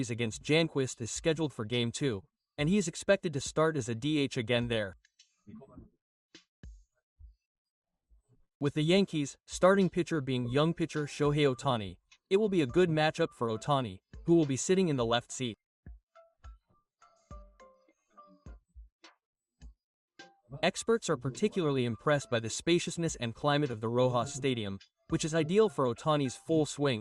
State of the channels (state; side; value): identical; both; correlation 1.00